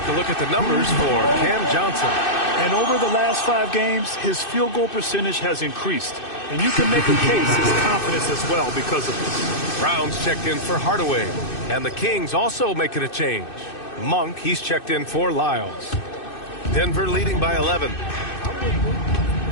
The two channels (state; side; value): late; right; 2.6 ms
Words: a look at the numbers for Cam Johnson. And over the last 5 games, his field goal percentage has increased. And you can make a case his confidence as well because of this. Brown's checked in for Hardaway. And the Kings also making a change. Monk, he's checked in for Lyles. Denver leading by 11.